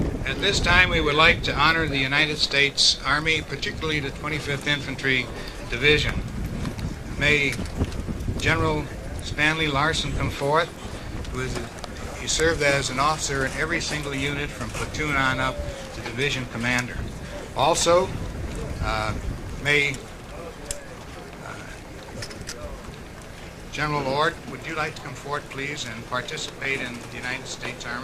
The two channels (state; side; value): identical; both; correlation 1.00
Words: At this time, we would like to honor the United States Army, particularly the 25th Infantry Division. May General Stanley Larson come forth, he served as an officer in every single unit from platoon on up to division commander. Also, may General Ord, would you like to come forward, please, and participate in the United States